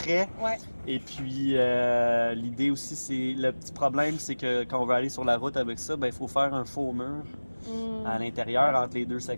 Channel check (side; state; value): both; inverted; correlation -1.00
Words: Ouais. Et puis, l'idée aussi, c'est le petit problème, c'est que quand on veut aller sur la route avec ça, il faut faire un faux mur à l'intérieur entre les deux